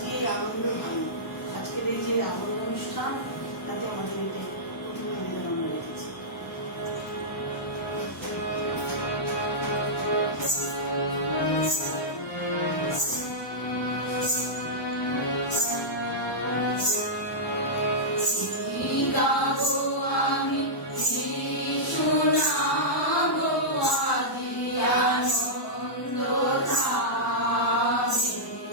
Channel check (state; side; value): normal; both; correlation -0.11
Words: এই আনন্দ ভালো, আজকের এই যে আনন্দ অনুষ্ঠান, তাতে আমাদের এটা প্রথম নিবেদন আমরা রেখেছি।